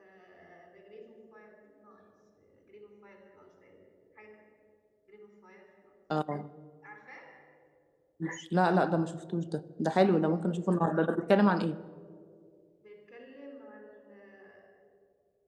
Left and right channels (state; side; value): identical; both; correlation 1.00